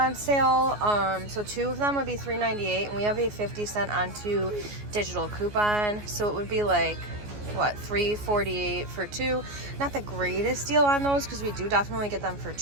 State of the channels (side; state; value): left; late; 14 ms